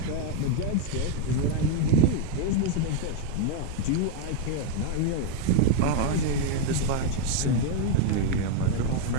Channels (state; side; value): different; both; correlation 0.01